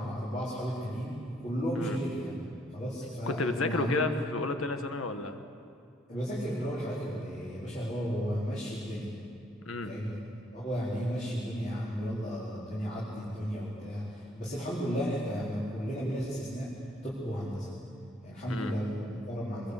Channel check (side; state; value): both; normal; correlation 0.68